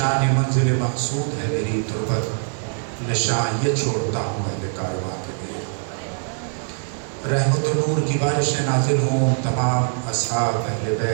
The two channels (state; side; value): silent; left; 63 dB below the other